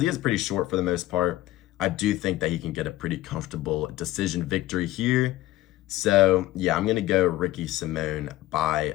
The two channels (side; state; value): right; quieter; 16.1 dB